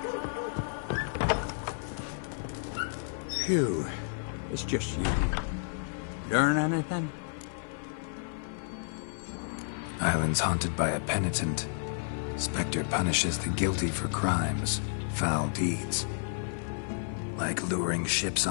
Phew. It's just you. Learn anything? Island's haunted by a penitent. Spectre punishes the guilty for crimes, foul deeds. Like luring ships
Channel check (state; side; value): silent; right; 57 dB below the other